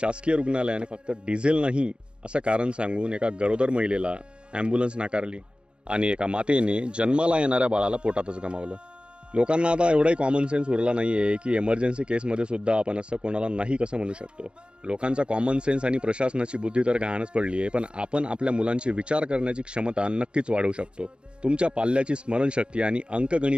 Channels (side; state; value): left; late; 0.055 ms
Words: रुग्णालयाने फक्त डिझेल नाही असं कारण सांगून एका गरोदर महिलेला ॲम्ब्युलन्स नाकारली आणि एका मातेने जन्माला येणाऱ्या बाळाला पोटातच गमावलं. लोकांना आता एवढाही कॉमन सेन्स उरला नाहीये की इमर्जन्सी केसमध्ये सुद्धा आपण असं कोणाला नाही कसं म्हणू शकतो. लोकांचा कॉमन सेन्स आणि प्रशासनाची बुद्धी तर गहाणच पडली आहे, पण आपण आपल्या मुलांची विचार करण्याची क्षमता नक्कीच वाढवू शकतो. तुमच्या पाल्याची स्मरणशक्ती आणि